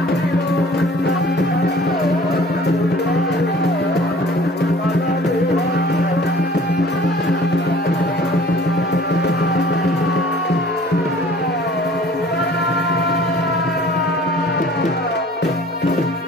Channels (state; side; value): normal; both; correlation 0.50